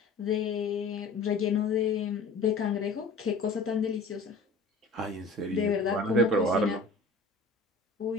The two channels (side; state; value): right; quieter; 3.7 dB